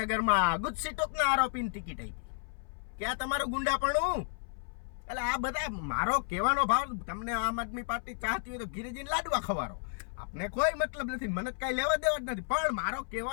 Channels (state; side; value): silent; right; 56 dB below the other